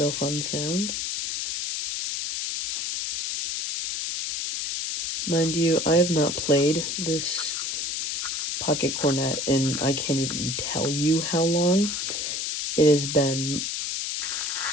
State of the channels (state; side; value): noise; left; hiss, 2 dB below the sound